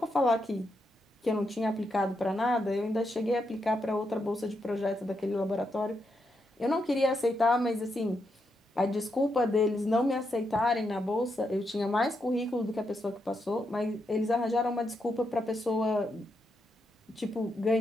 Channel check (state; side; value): normal; both; correlation 0.82